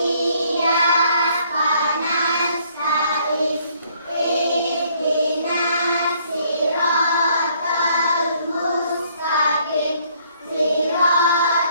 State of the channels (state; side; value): inverted; both; correlation -0.65